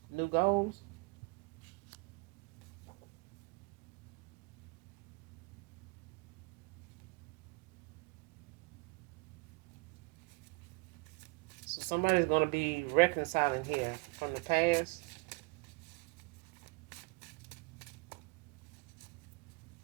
new goals. So somebody's going to be reconciling here from the past.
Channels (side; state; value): left; quieter; 28.2 dB